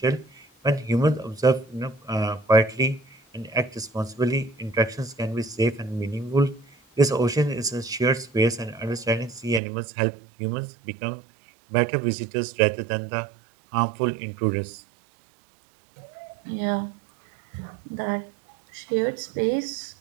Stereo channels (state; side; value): drops out; left; at 9.6 s